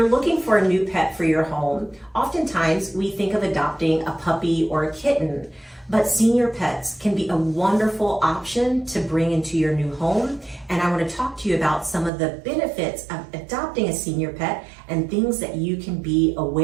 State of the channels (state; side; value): drops out; left; at 12.1 s